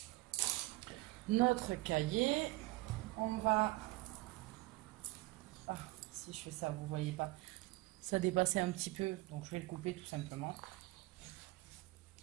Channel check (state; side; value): quieter; left; 20.6 dB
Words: cahier. On va... Ah, si je fais ça, vous voyez pas. Ça dépassait un petit peu, donc je vais le couper tout simplement.